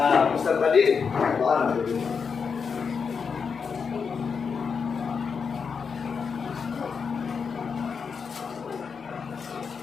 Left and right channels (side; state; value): right; quieter; 5.9 dB